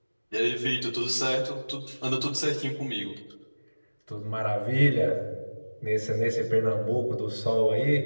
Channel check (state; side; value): inverted; both; correlation -1.00